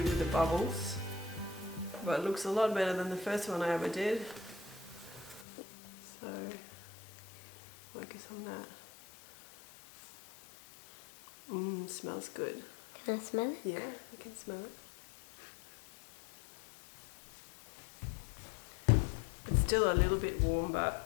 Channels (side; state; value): right; drops out; at 5.5 s